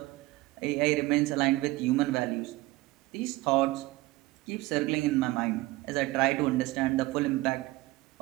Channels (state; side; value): quieter; left; 19.3 dB